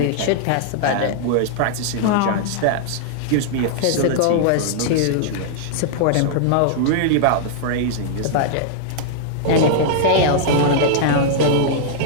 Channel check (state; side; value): different; both; correlation -0.01